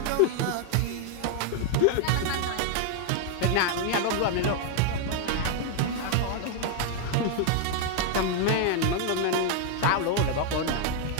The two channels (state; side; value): different; both; correlation 0.00